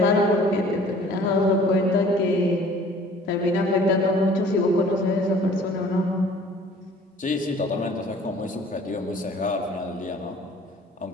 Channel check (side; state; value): both; normal; correlation 0.51